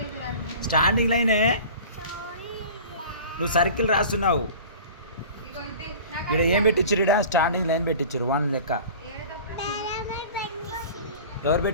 స్టాండింగ్ లైనే. నువ్వు సర్కిల్ రాస్తున్నావు. ఇక్కడ ఏం పెట్టించారు? ఇక్కడ స్టాండింగ్ లైన్ పెట్టించారు 1 లెక్క. ఎవరు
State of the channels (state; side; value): inverted; both; correlation -0.41